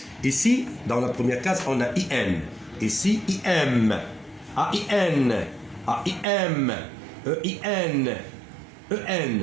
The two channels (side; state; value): left; drops out; at 6.2 s